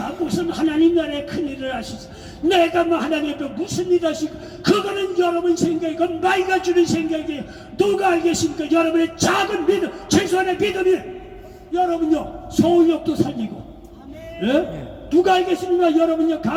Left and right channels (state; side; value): identical; both; correlation 1.00